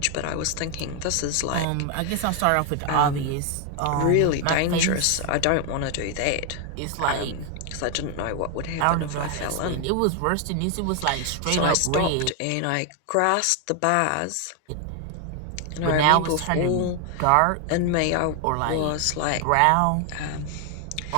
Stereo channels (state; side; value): different; both; correlation 0.00